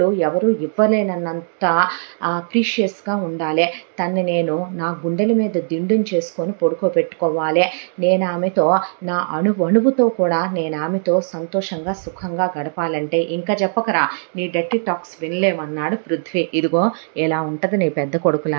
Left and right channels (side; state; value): left; silent; digital silence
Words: ఎవరు ఇవ్వలేనన్నంత ప్రీషియస్గా ఉండాలి. తన్ని నేను నా గుండెల మీద దిండుని చేసుకొని పడుకోబెట్టుకోవాలి. నేను ఆమెతో నా అణువుతో కూడా నేను ఆమెతో సంతోషంగా సుఖంగా గడపాలంటే ఇంకా చెప్పకరా, నీ డర్టీ టాక్స్ వినలేమన్నాడు పృథ్వీ. ఇదిగో ఇలా ఉంటుంది నీ పెద్ద